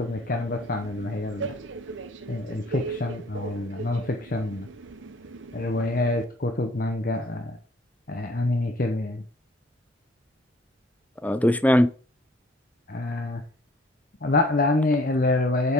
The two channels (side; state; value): both; normal; correlation 0.58